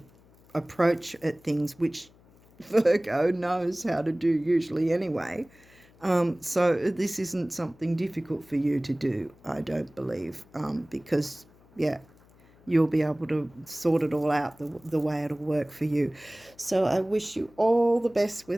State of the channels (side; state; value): left; noise; hum, 28 dB below the sound